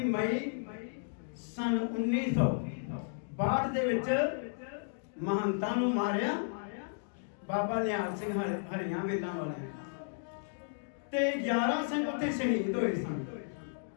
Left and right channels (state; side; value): silent; right; digital silence